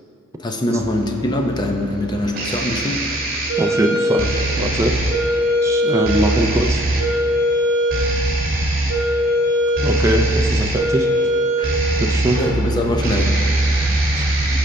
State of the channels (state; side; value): normal; both; correlation 0.60